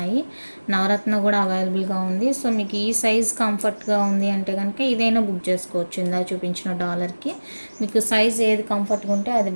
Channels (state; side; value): inverted; both; correlation -1.00